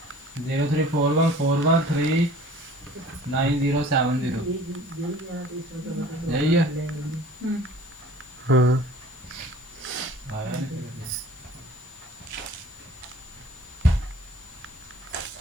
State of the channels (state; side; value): normal; both; correlation 0.48